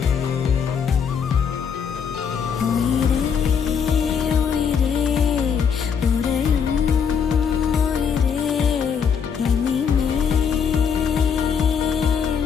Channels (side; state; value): right; quieter; 6.9 dB